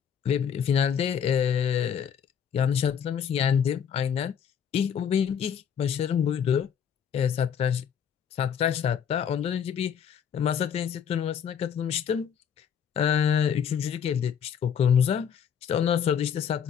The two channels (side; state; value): right; quieter; 8.0 dB